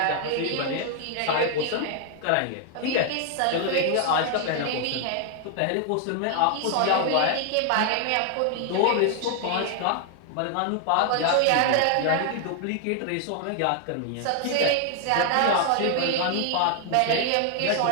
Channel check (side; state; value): both; different; correlation 0.00